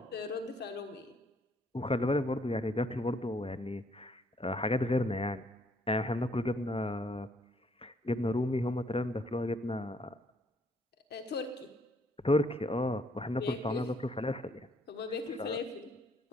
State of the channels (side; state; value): both; normal; correlation 0.67